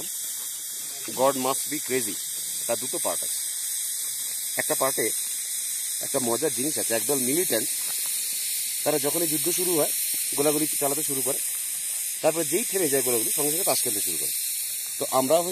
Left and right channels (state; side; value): identical; both; correlation 1.00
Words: গড মাস্ট বি ক্রেজি। তার দুটো পার্ট আছে। একটা পার্টে একটা মজার জিনিস আছে। একদল মিলিটেন্ট, তারা যখনই যুদ্ধ শুরু হয় গোলাগুলি চালাতে শুরু করে, তারপরে যেই থেমে যায় গোলাগুলি সঙ্গে সঙ্গে তাস খেলতে শুরু করে। তো আমরাও